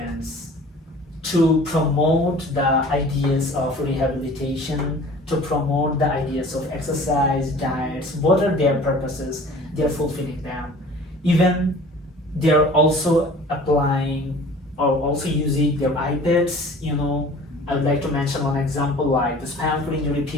to promote the ideas of rehabilitation, to promote the ideas of exercise, diets, what are their purposes, they're fulfilling them. Even they're also applying or also using their iPads. I would like to mention one example, like the spinal cord injury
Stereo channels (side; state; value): both; normal; correlation 0.46